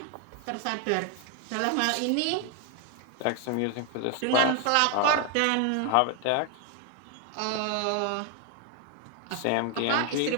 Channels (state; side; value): different; both; correlation 0.01